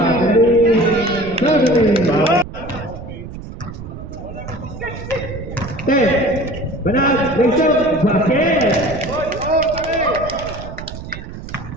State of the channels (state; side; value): noise; right; rumble, 11 dB below the sound